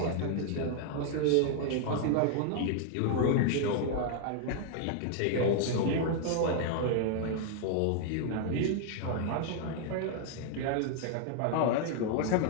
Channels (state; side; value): different; both; correlation 0.00